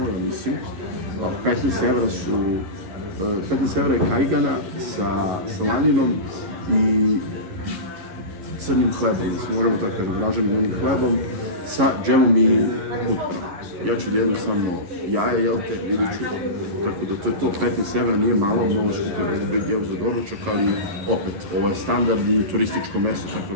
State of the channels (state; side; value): late; left; 11 ms